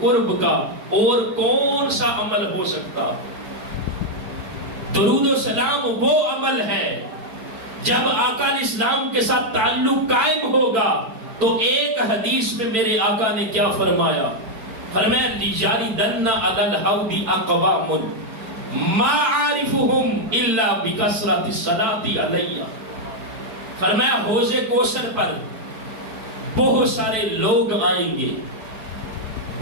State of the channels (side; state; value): left; late; 4.5 ms